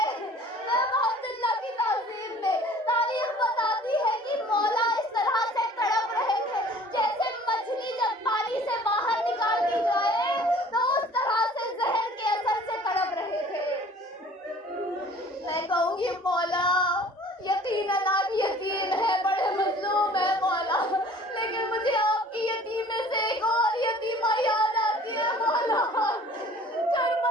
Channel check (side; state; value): both; normal; correlation 0.50